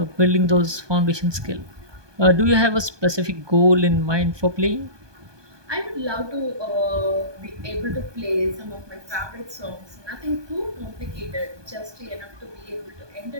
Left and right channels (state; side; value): late; left; 1.2 ms